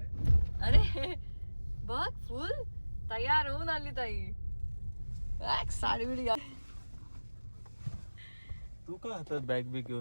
अरे बघ फुल तयार होऊन आली ताई. साडी बिडी तू का आता बॅग बिग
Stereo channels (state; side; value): inverted; both; correlation -1.00